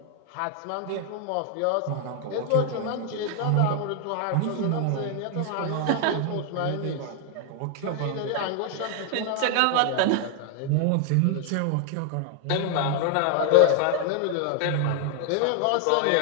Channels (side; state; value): both; different; correlation 0.00